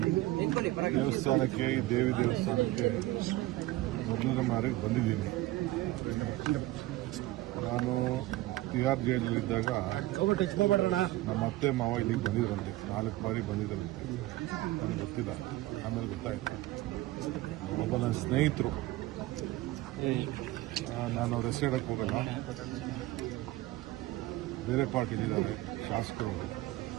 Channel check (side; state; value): left; quieter; 17.4 dB